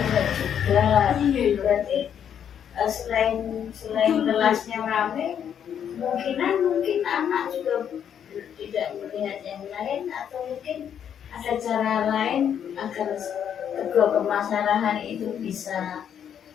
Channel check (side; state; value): right; quieter; 8.8 dB